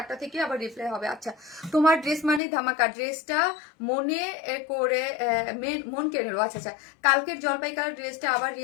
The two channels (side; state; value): right; drops out; at 2.4 s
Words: থেকে আবার রিপ্লাই হবে। আচ্ছা, তোমার ড্রেস মানে ধামাকা, ড্রেসটা মনে করে মন কেড়ে নিল। আচ্ছা আচ্ছা, কালকের জলপাই কালার ড্রেসটা আবার